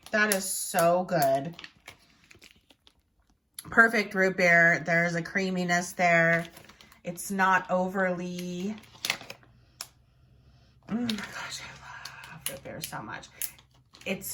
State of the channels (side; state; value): both; identical; correlation 1.00